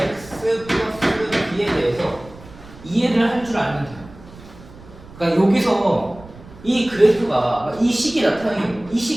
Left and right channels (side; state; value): right; noise; rumble, 20 dB below the sound